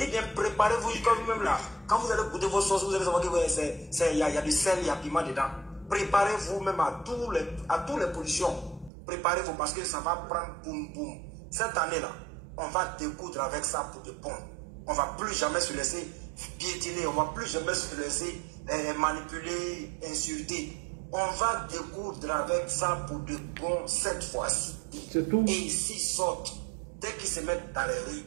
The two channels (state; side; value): drops out; left; at 8.9 s